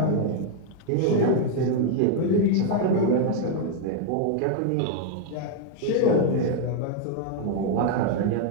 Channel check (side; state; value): both; different; correlation 0.00